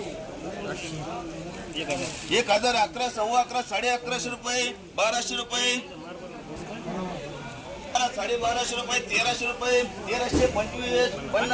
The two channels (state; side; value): identical; both; correlation 1.00